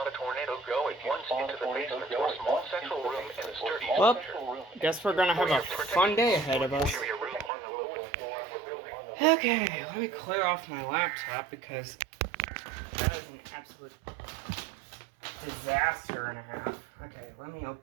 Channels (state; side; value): drops out; left; at 7.5 s